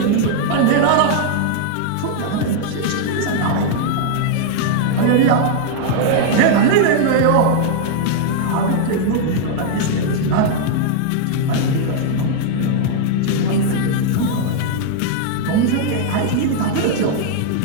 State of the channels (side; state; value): both; different; correlation 0.00